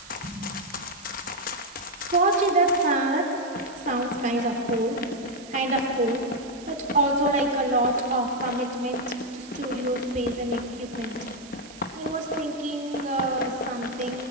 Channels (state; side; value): noise; right; hiss, 19 dB below the sound